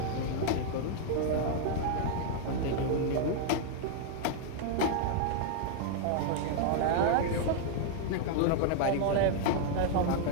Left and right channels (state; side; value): different; both; correlation -0.01